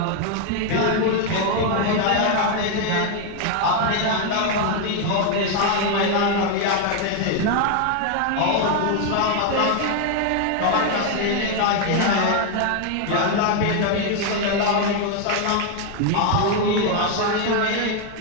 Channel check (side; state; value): both; different; correlation 0.01